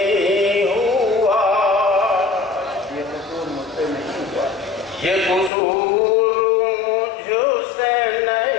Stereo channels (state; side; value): drops out; right; at 5.5 s